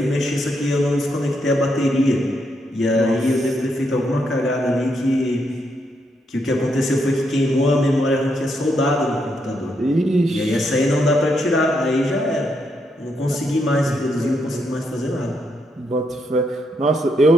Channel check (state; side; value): normal; both; correlation 0.79